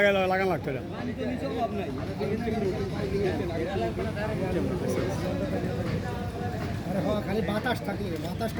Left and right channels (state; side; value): identical; both; correlation 1.00